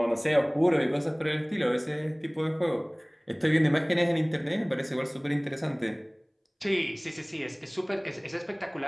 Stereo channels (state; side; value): identical; both; correlation 1.00